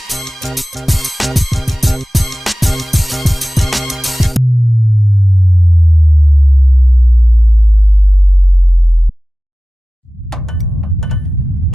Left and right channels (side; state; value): both; normal; correlation 0.97